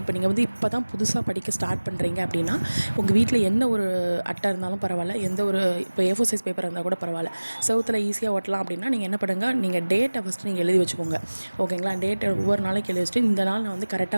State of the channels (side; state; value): both; inverted; correlation -1.00